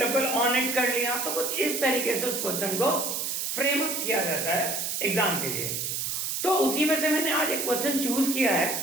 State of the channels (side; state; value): right; noise; hiss, 2 dB below the sound